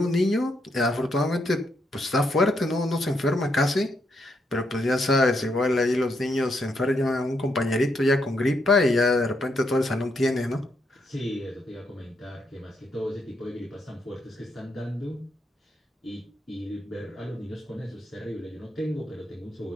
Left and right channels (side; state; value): both; normal; correlation 0.78